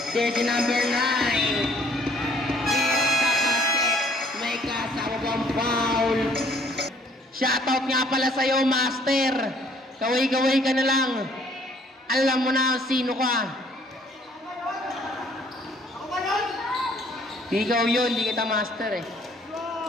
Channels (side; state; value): both; normal; correlation 0.61